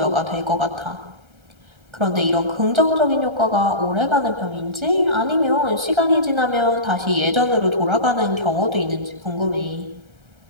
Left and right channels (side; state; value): left; late; 1.3 ms